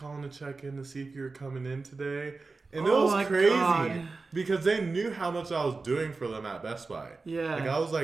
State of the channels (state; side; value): quieter; left; 3.9 dB